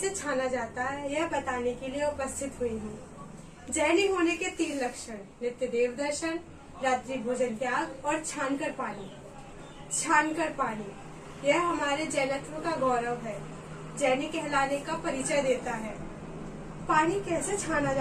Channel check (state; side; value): identical; both; correlation 1.00